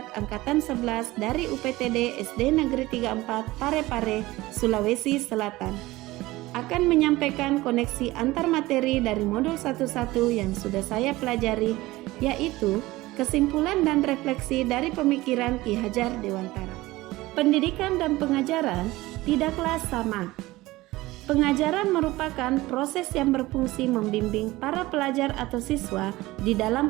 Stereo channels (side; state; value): left; quieter; 18.8 dB